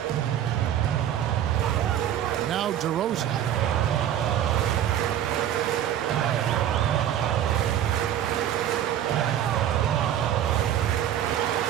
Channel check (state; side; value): quieter; left; 10.8 dB